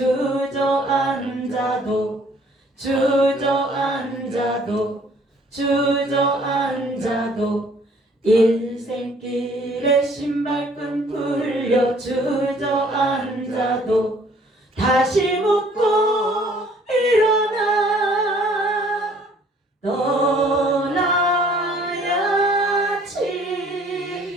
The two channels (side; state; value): both; normal; correlation 0.58